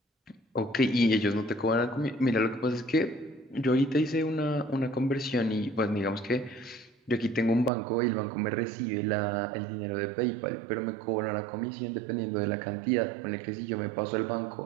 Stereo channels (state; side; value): drops out; left; at 7.7 s